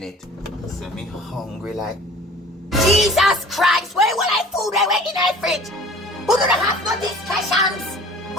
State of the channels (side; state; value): both; normal; correlation 0.46